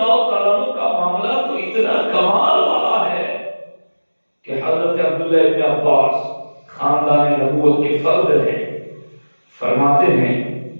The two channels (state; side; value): inverted; both; correlation -1.00